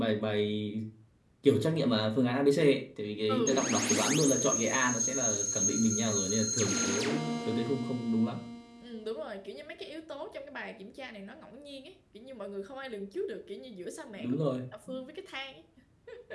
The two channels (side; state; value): both; identical; correlation 1.00